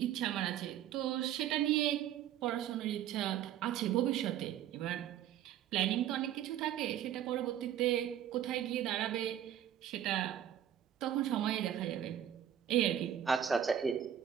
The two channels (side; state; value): left; quieter; 10.5 dB